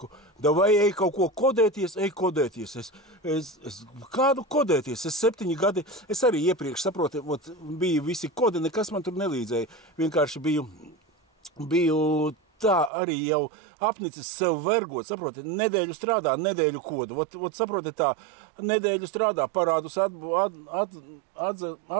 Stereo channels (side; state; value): left; drops out; at 12.9 s